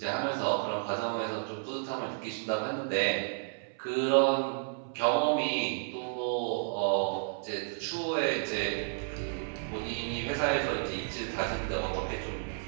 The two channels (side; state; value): left; silent; 56 dB below the other